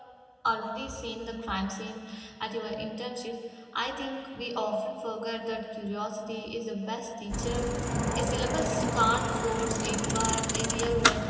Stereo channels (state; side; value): identical; both; correlation 1.00